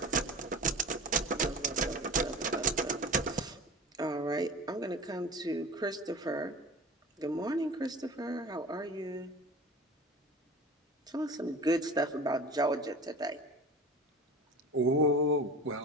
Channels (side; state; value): both; normal; correlation 0.35